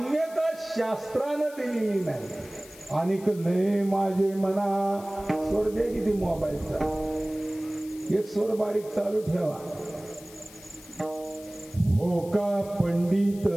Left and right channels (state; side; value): noise; left; hiss, 20 dB below the sound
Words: शास्त्रानं दिलेली नाही. अनिक नये माझे मना. स्वर दे किती मोबाईलचा, एक स्वर बारीक चालू ठेवा. हो का पंडित